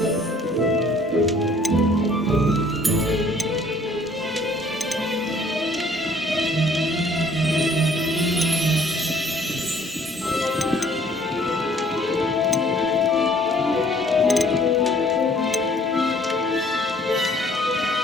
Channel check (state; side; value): normal; both; correlation 0.58